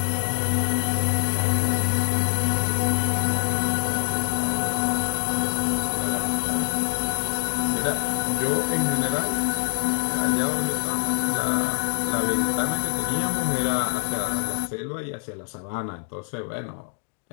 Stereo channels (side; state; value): right; silent; digital silence